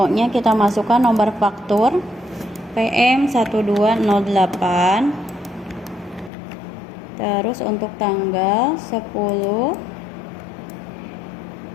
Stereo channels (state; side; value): drops out; right; at 6.3 s